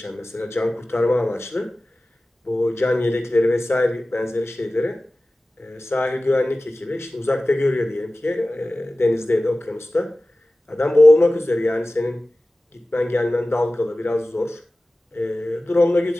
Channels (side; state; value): both; normal; correlation 0.97